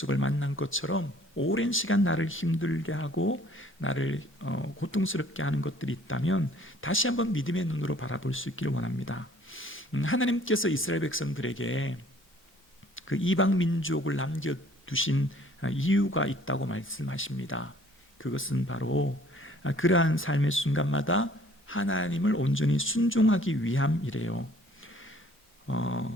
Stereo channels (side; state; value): both; normal; correlation 0.56